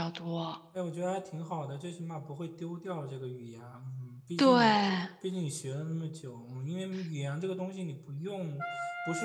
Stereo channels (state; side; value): identical; both; correlation 1.00